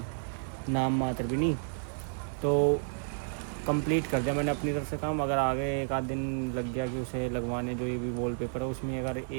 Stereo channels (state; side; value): silent; left; digital silence